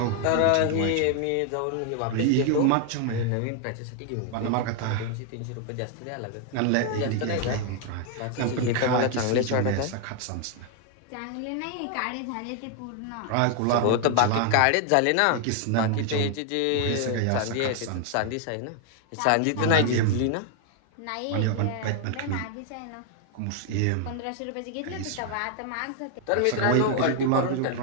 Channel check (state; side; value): different; both; correlation 0.00